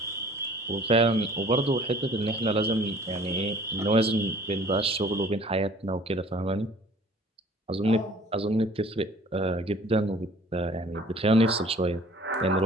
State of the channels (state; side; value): normal; both; correlation 0.51